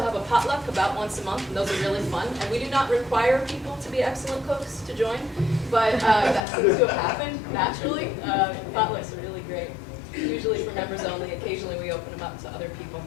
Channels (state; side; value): drops out; right; at 6.4 s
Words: have a potluck about once a month, and those are really fun. And we do not require people to be excellent cooks to join, but that seems to have happened naturally. Potlucks are really great. Usually for members only. Occasionally we open them up to other people.